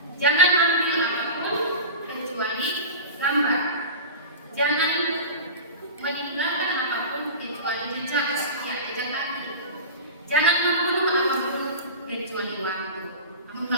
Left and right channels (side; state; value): both; inverted; correlation -0.31